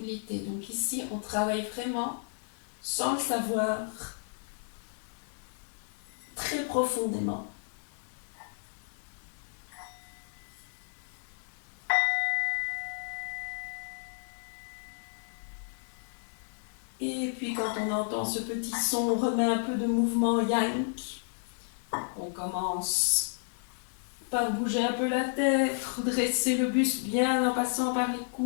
Donc ici, on travaille vraiment, sans le savoir, très profondément. Et puis quand on entend ce petit son, on remet un peu de mouvement yank. On commence par bouger un peu la tête, redresser le buste bien en passant par les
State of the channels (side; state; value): right; silent; 56 dB below the other